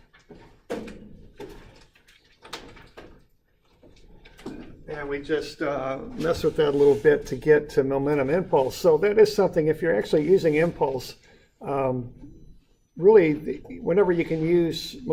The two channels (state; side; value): identical; both; correlation 1.00